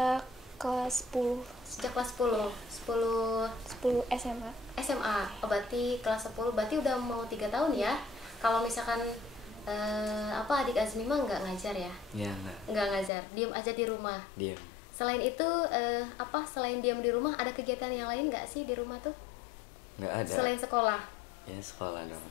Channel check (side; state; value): right; drops out; at 13.1 s